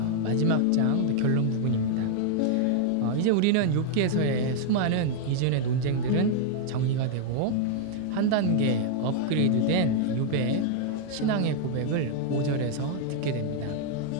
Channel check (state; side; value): different; both; correlation 0.00